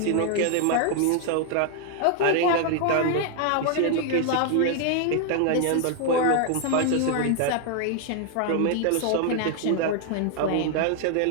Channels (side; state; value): both; different; correlation 0.00